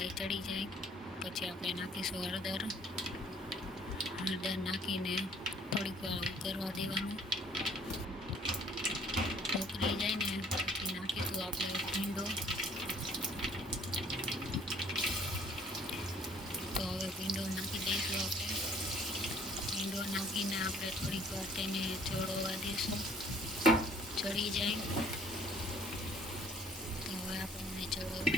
ચડી જાય પછી આપણે નાખીશું હળદર નાખીને થોડીક વાર ઉકળવા દેવાનું. ઉકળી જાય ને પછી નાખીશું આપણે ભીંડો. તો હવે ભીંડો નાખી દઈશું આપણે. ભીંડો નાખીને આપણે થોડીક વાર તેને ચડવા દઈશું. ચડી જાય તો હવે આપણે ચડવા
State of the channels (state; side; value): normal; both; correlation 0.58